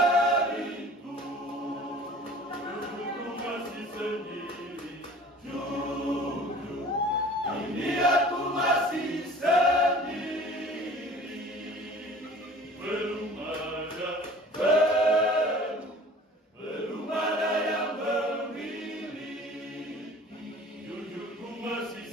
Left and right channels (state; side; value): normal; both; correlation 0.46